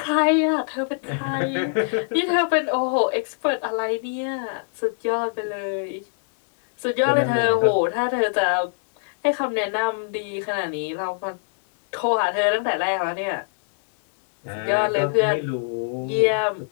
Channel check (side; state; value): right; silent; digital silence